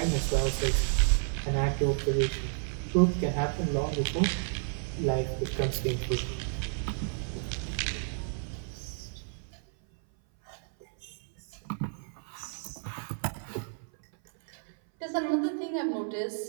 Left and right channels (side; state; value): left; silent; 57 dB below the other